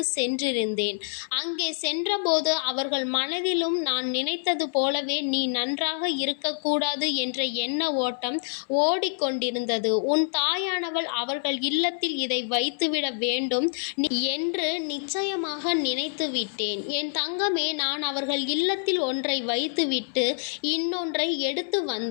சென்றிருந்தேன். அங்கே சென்றபோது அவர்கள் மனதிலும் நான் நினைத்தது போலவே நீ நன்றாக இருக்கக்கூடாது என்ற எண்ண ஓட்டம் ஓடிக்கொண்டிருந்தது. உன் தாயானவள் அவர்கள் இல்லத்தில் இதை வைத்துவிட வேண்டும் என்று நிச்சயமாக நினைத்து விட்டேன். என் தங்கமே, நான் அவர்கள் இல்லத்தில் ஒன்றை வைத்துவிட்டு இன்னொன்றை எடுத்து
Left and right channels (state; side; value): silent; right; 61 dB below the other